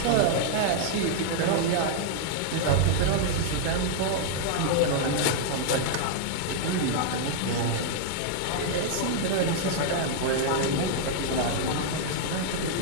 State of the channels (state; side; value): different; both; correlation -0.01